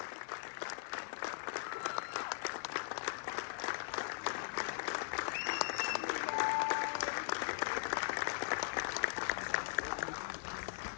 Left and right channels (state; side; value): silent; right; digital silence